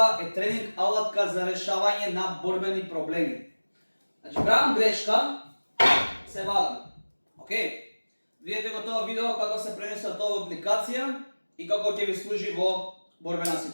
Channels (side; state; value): both; inverted; correlation -1.00